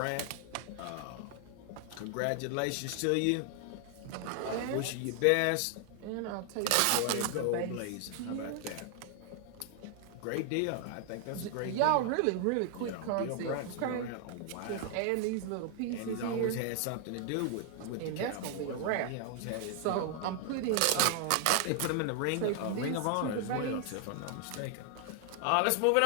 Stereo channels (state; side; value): different; both; correlation 0.00